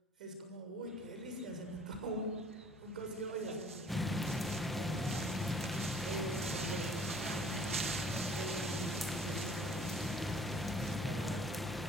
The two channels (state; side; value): normal; both; correlation 0.55